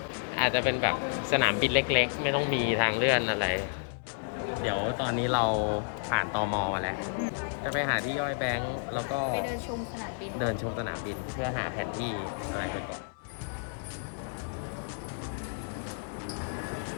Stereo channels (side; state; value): right; silent; 57 dB below the other